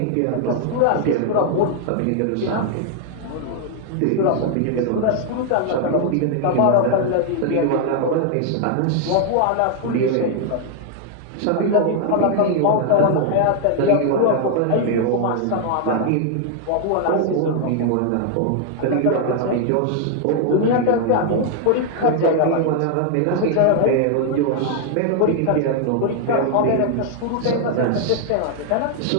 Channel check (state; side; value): different; both; correlation 0.00